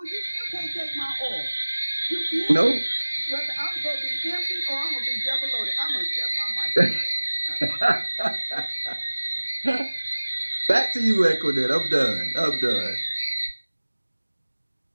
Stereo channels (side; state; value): both; inverted; correlation -1.00